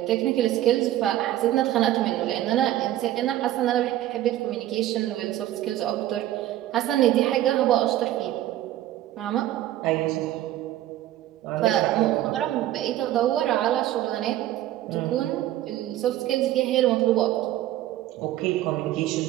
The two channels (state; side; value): quieter; left; 13.8 dB